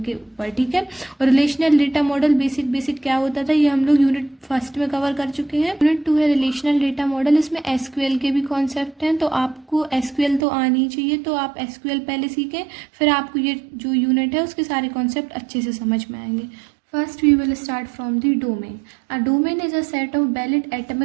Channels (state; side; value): drops out; left; at 10.5 s